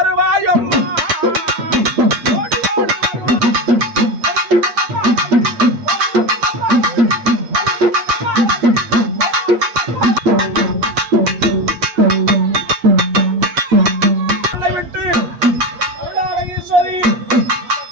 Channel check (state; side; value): late; left; 8.4 ms